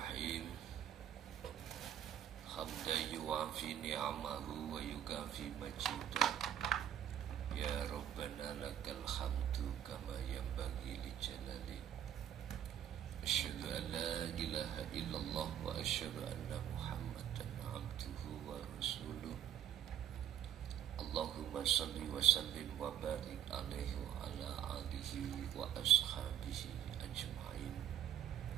Hamdan yuwafi ni'amahu wa yukafi majidah. Ya Rabbana lakal hamdu kama yanbaghi li jalali. Asyhadu an la ilaha illallah wa asyhadu anna Muhammadan abduhu wa rasuluh. Allahumma salli wa sallim wa barik alaihi wa ala alihi wa ashabihi ajma'in.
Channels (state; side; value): quieter; left; 10.4 dB